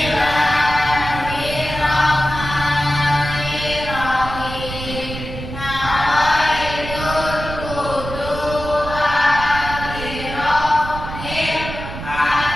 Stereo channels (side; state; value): right; noise; rumble, 9 dB below the sound